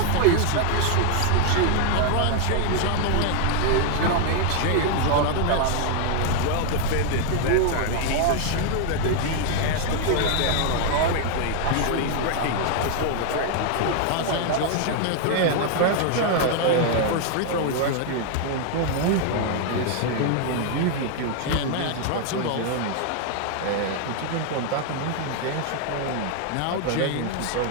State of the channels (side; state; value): both; different; correlation 0.00